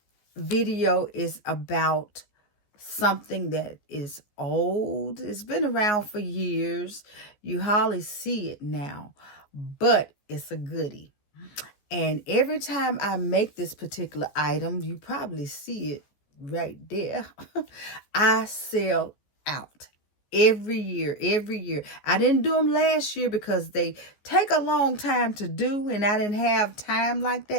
video is about something that is old. It's been around for years. You hardly see it now, but it's a goodie. And every time I make this particular item, you probably see it right there. I sell out every year. I didn't do them last year because they take a long time to do, and I didn't have time like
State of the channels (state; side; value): late; right; 14 ms